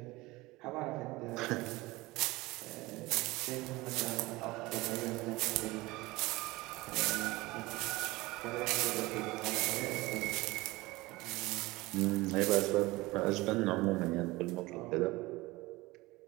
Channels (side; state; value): left; quieter; 21.0 dB